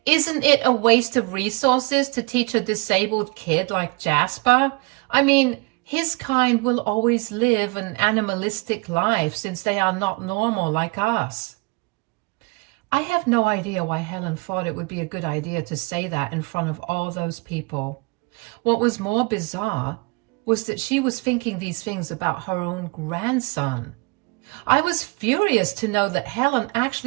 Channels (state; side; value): quieter; left; 27.3 dB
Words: Isn't it a waste of resources to teach a disabled kid like Jasper? I mean, his kind will always live an animalistic life since they are not normal like us." I have no idea why Helen thought it would be a good idea to say that in front of all those people. What was more bizarre was that she was thinking these things about her own grandson. I was furious to know that Helen